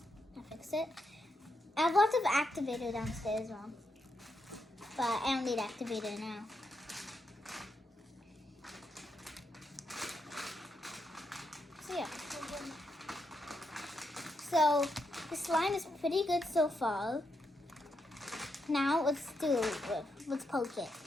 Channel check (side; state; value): both; normal; correlation 0.82